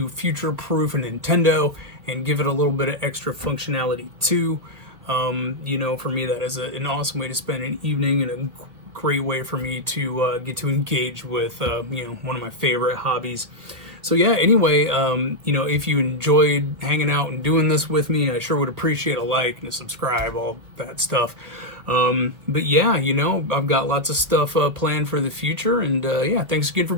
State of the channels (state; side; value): late; left; 1.5 ms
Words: future-proof a Nintendo and give it a little bit of extra functionality too. For me, that is an awesome way to spend an evening and a great way for me to get to engage with, one of my favorite hobbies. So yeah, anyway, if you enjoyed hanging out and doing this with me, I sure would appreciate a like and a subscribe, all that stuff. But yeah, I've got lots of stuff planned for the future, and yeah, thanks again for